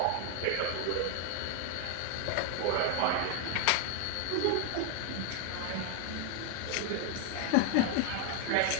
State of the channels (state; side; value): different; both; correlation 0.00